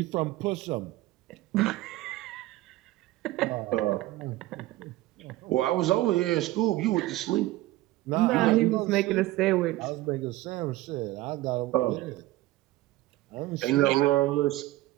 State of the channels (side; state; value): left; quieter; 17.3 dB